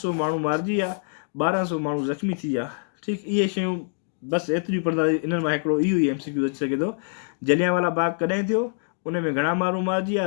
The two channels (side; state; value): right; silent; digital silence